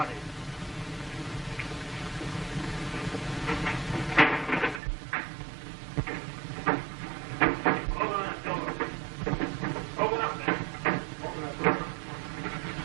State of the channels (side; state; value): left; drops out; at 4.8 s